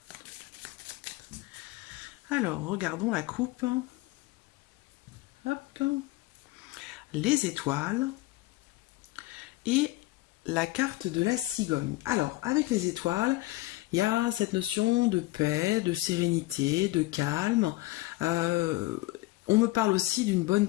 Verseaux, alors, regardons la coupe. Hop. Les étoiles et la carte de la cigogne. Alors, avec les étoiles, il y a cette notion de paix, de sérénité, de calme. On me parle aussi d'une bonne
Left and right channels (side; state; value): right; quieter; 19.5 dB